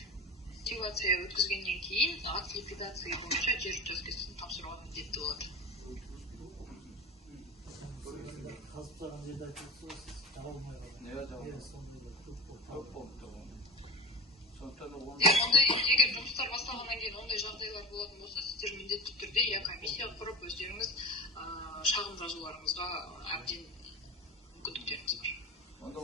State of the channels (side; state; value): both; normal; correlation 0.30